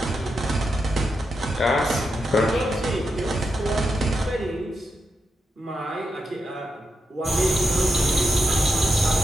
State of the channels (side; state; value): both; normal; correlation 0.86